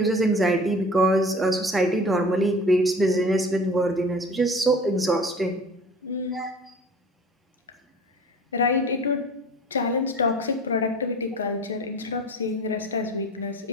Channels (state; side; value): normal; both; correlation 0.42